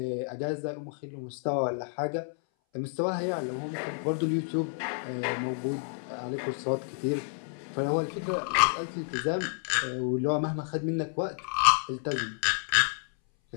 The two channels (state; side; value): silent; right; 58 dB below the other